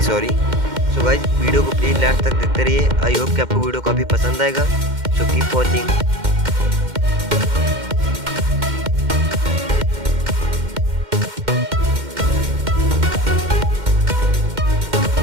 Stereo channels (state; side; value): late; left; 2.1 ms